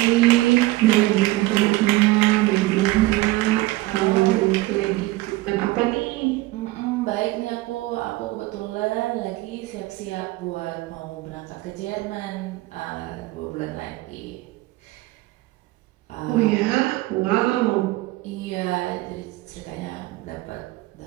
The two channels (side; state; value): left; quieter; 19.0 dB